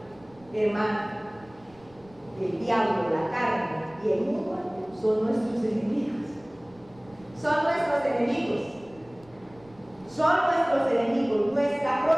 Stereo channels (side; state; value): right; noise; rumble, 26 dB below the sound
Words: Hermano, el diablo, la carne y el mundo son nuestros enemigos. Son nuestros enemigos. Son nuestros enemigos. Nuestra